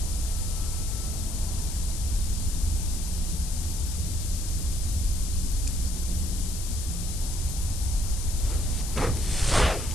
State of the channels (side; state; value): left; noise; hiss, 8 dB below the sound